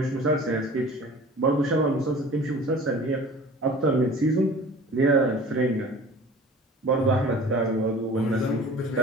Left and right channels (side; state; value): both; normal; correlation 0.43